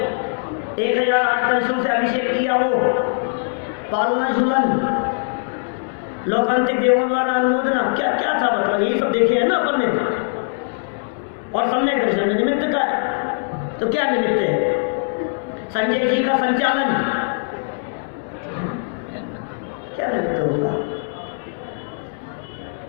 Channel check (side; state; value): right; silent; digital silence